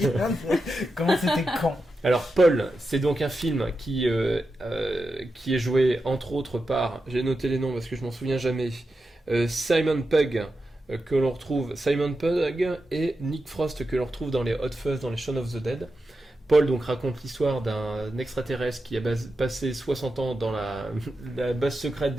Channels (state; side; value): normal; both; correlation 0.89